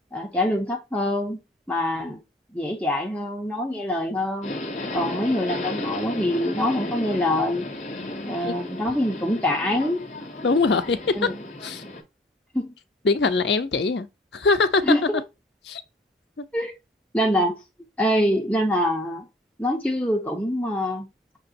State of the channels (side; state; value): both; normal; correlation 0.53